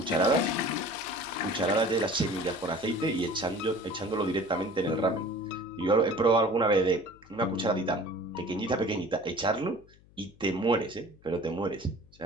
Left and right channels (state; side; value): noise; left; hum, 27 dB below the sound